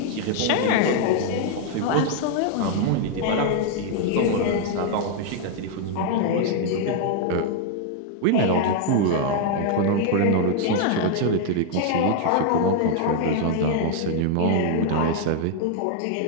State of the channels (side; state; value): both; different; correlation 0.00